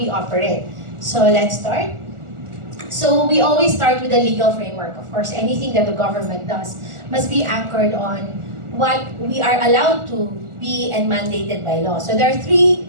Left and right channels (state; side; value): late; left; 1.4 ms